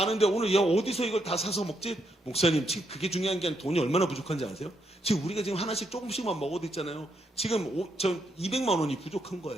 오늘 어디서 이걸 다 사서 먹지? 목사님, 지금 그게 중요한 게 아니라 돈이 얼마나 부족한지 아세요? 지금 우리가 지금 하나씩 조금씩만 먹어도 있잖아요. 지금 저 200만 원이 부족한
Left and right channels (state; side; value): normal; both; correlation 0.78